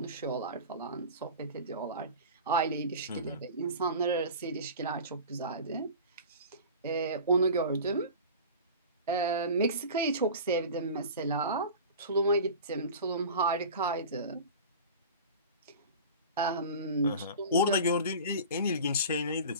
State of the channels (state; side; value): inverted; both; correlation -0.35